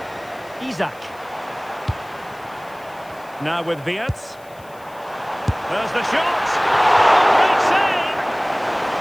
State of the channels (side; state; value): left; noise; hiss, 27 dB below the sound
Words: Isak. Now with Wirtz. There's the shot! Great save!